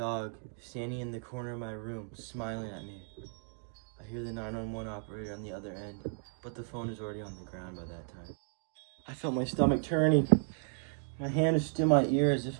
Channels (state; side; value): silent; left; 55 dB below the other